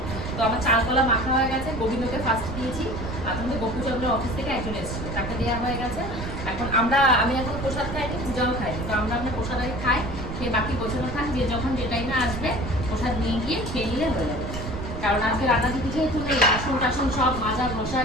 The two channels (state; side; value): noise; right; rumble, 6 dB below the sound